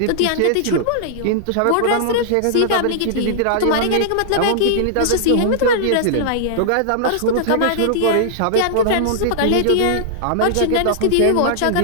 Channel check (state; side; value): different; both; correlation -0.01